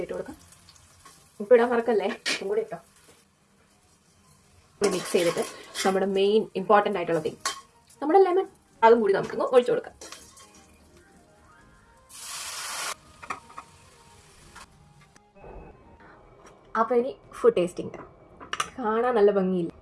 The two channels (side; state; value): both; identical; correlation 1.00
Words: ഇട്ട് കൊടുക്കാം. ഉപ്പിടാൻ മറക്കല്ലേ, ഉപ്പും കൂടി ഇട്ടോ. മിക്സ് ചെയ്തിട്ട് നമ്മുടെ മെയിൻ ഇമ്പോർട്ടൻ്റ് ആയിട്ടുള്ള തിങ് നമ്മുടെ ലെമൺ അതും കൂടി നമുക്കൊന്ന് ഒഴിച്ചു കൊടുക്കാം. അപ്പോൾ ഇനി ഫുഡ് ടേസ്റ്റിംഗ്. കാണാൻ നല്ല ഭംഗിയില്ല.